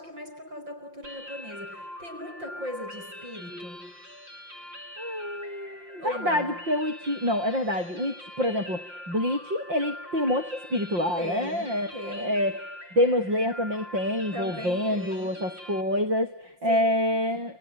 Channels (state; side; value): late; left; 5.7 ms